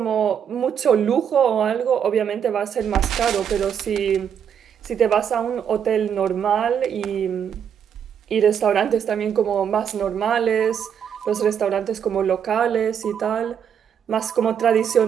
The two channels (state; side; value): quieter; left; 8.2 dB